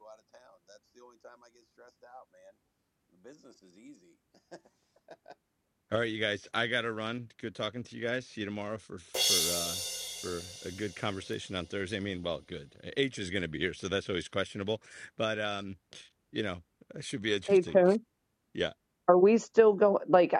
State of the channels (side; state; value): both; identical; correlation 1.00